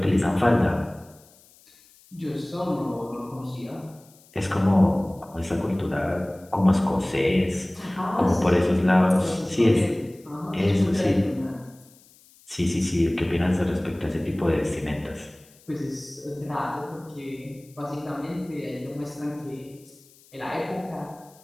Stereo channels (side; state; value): left; noise; hiss, 27 dB below the sound